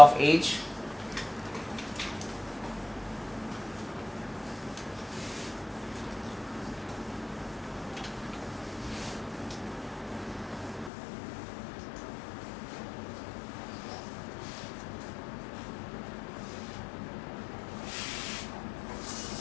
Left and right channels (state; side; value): drops out; right; at 10.9 s